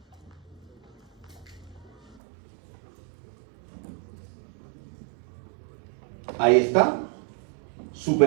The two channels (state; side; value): drops out; left; at 2.1 s